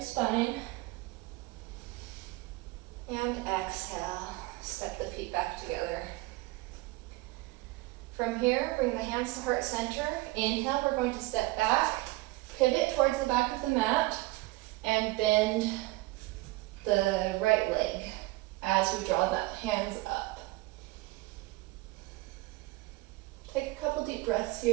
spine. And exhale, step the feet back together. From here, bring the hands to heart center. Inhale, we're going to step back, pivot towards the back of the mat, and bend the right leg as we draw the hands up. Take a couple deep breaths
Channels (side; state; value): left; quieter; 20.5 dB